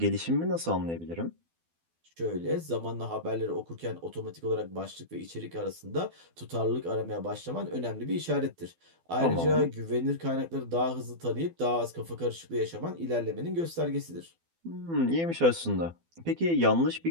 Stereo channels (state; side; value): late; left; 12 ms